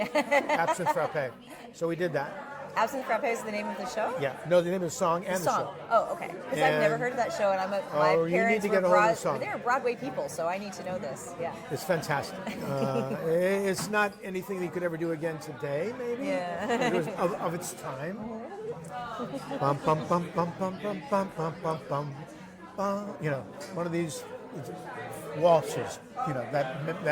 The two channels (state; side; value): identical; both; correlation 1.00